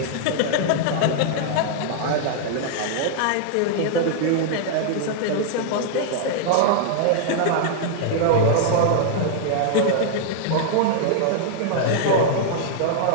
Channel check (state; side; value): different; both; correlation -0.01